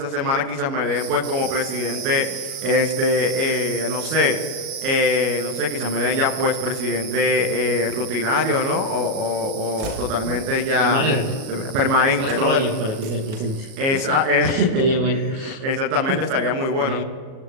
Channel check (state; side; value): late; left; 37 ms